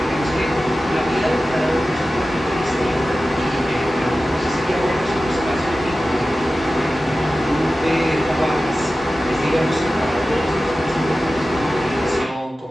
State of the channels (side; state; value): both; normal; correlation 0.95